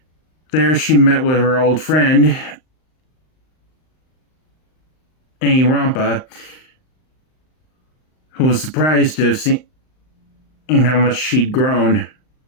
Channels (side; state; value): right; late; 39 ms